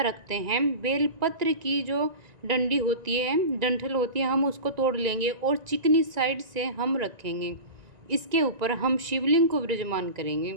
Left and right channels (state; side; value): late; left; 1.9 ms